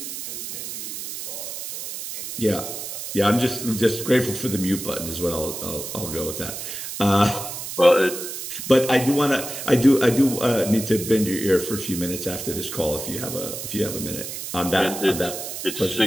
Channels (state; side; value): noise; right; hiss, 7 dB below the sound